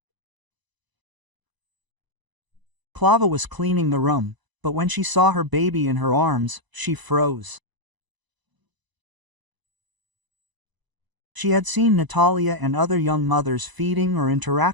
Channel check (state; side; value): late; left; 1.0 ms